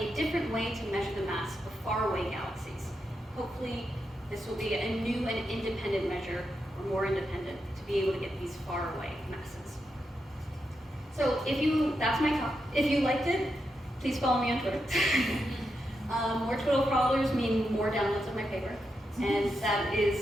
different way to measure the mass of faraway galaxies. Hopefully, this will be a new and independent measure, or more independent, to be able to get these faraway masses. So that's my talk. If you liked it, please follow me on Twitter. More Twitter followers mean more downloads of my paper, and that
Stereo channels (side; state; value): both; normal; correlation 0.85